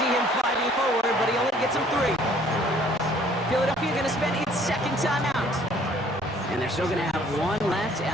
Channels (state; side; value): normal; both; correlation 0.58